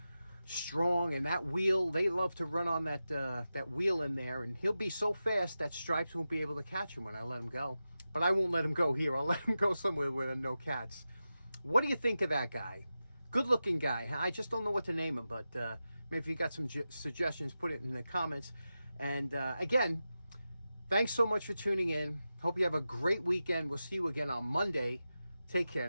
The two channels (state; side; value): inverted; both; correlation -0.92